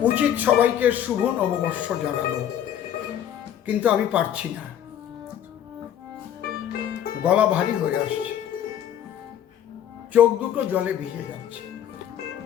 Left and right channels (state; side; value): quieter; right; 10.1 dB